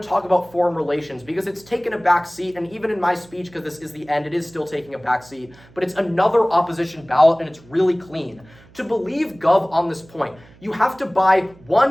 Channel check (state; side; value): noise; right; hum, 25 dB below the sound